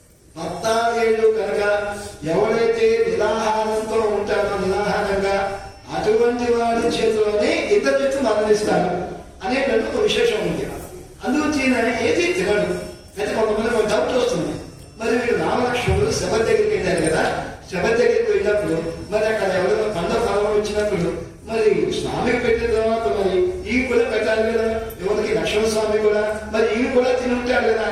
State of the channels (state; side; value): identical; both; correlation 1.00